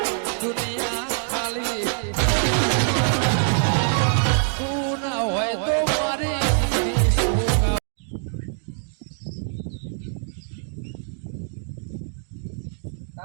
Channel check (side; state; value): left; silent; digital silence